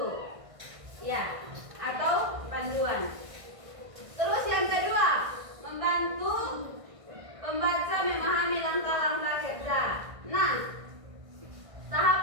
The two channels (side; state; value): left; late; 1.6 ms